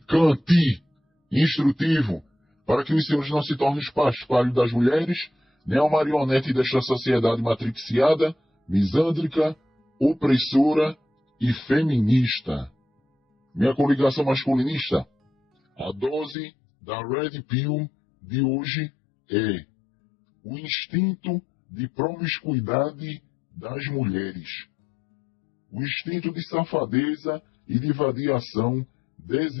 instrutivo, para que os senhores não se tornem paspalho das mulheres, nem a marionete desta sociedade matriciada, misândrica, opressora e feminista. Minha coligação masculinista, a dose da Red Pill de hoje é o instinto de promiscuidade das mulheres, o instinto de safadeza e de vadiação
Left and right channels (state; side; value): drops out; right; at 16.4 s